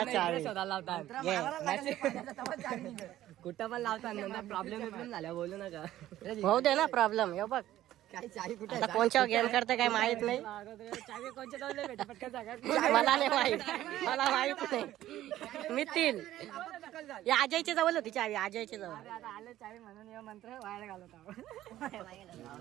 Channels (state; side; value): quieter; left; 13.8 dB